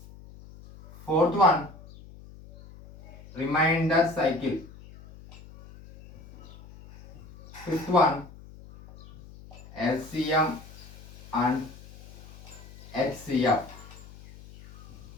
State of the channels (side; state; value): left; noise; hum, 19 dB below the sound